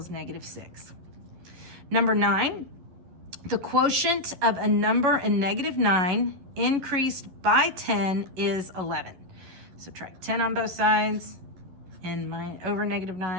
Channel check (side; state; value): left; late; 11 ms